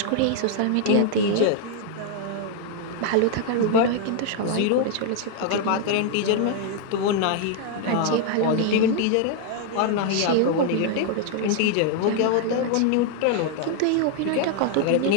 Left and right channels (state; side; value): different; both; correlation 0.00